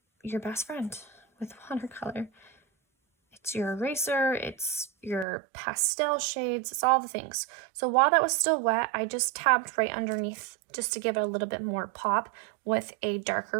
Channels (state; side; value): drops out; left; at 5.2 s